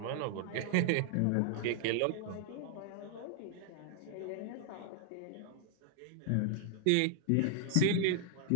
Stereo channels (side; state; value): both; different; correlation 0.00